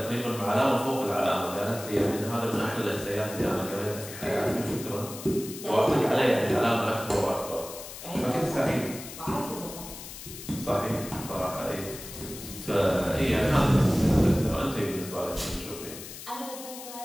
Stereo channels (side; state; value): left; noise; hiss, 12 dB below the sound